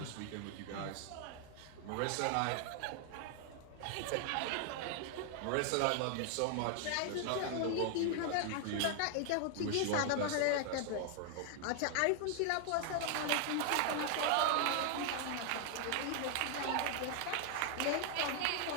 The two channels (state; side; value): different; both; correlation 0.00